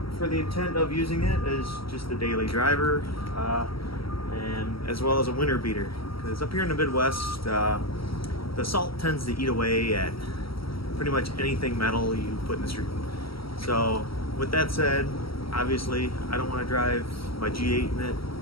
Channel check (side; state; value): right; late; 0.75 ms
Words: for the intent of using it as just a daily driver and as well as a winter beater, because up here in the Midwest the salt tends to eat away at pretty much anything metal you put in the street. So with that said, obviously I don't want to drive my G8 in it.